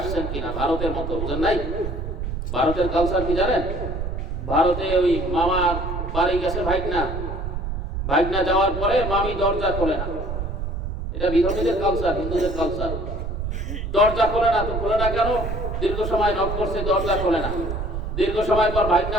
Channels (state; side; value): noise; right; rumble, 4 dB below the sound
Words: কিনা, ভারতের মতো, বুঝেন নাই? ভারতের কালচার কি জানেন? ভারতে ওই মামার বাড়ি গেছে ভাগনা যাওয়ার পরে মামি দরজা খোলে না। এটা বিধর্মীদের কালচার, হিন্দুদের কালচার। দরজা খোলে না, তো খোলে না কেন? দীর্ঘ সময় নক করছে, দরজা খোলে না। দীর্ঘ সময় পর ভাগনা